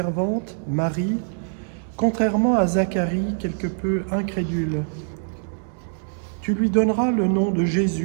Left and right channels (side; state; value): left; silent; 63 dB below the other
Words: Marie, contrairement à Zacharie, quelque peu incrédule. « Tu lui donneras le nom de